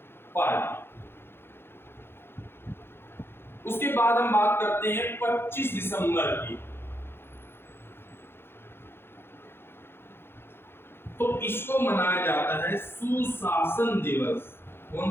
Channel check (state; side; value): late; right; 0.11 ms